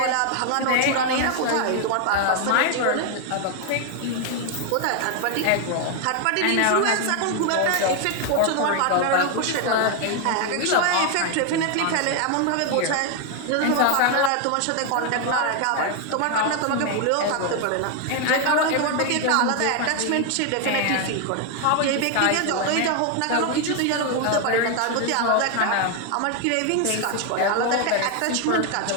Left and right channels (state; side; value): different; both; correlation 0.00